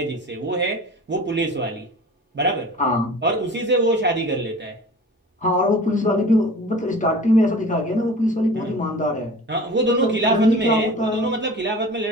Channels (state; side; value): normal; both; correlation 0.40